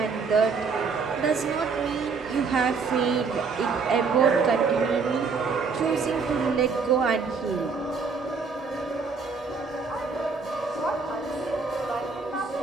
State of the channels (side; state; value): left; quieter; 5.0 dB